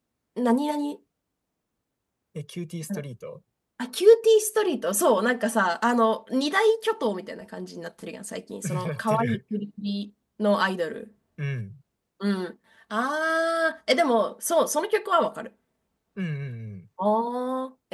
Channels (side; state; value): both; identical; correlation 1.00